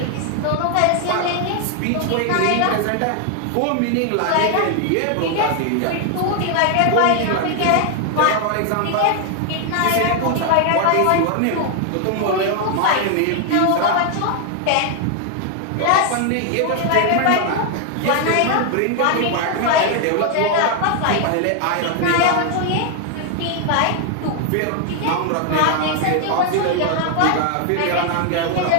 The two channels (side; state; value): both; different; correlation 0.00